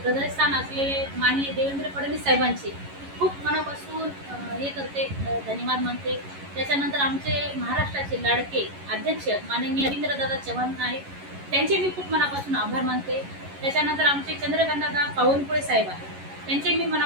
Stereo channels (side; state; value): left; late; 11 ms